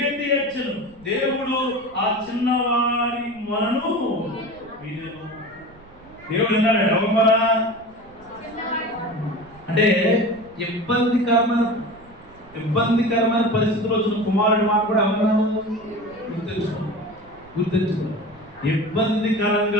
ఏడ్చాను. దేవుడు ఆ చిన్నవారి మనను వినెను. దేవుడు విన్నాడు. ఎవరు అంటే ఇబ్బందికరమైన పరిస్థితుల్లో వచ్చిన కుమారుడి మాట కూడా ఎవరు గుర్తించుకో.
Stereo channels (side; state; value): right; noise; rumble, 25 dB below the sound